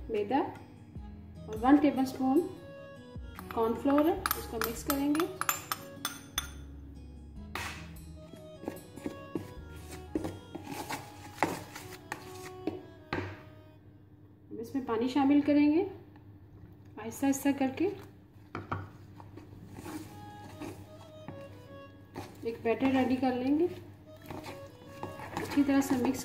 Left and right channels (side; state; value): both; identical; correlation 1.00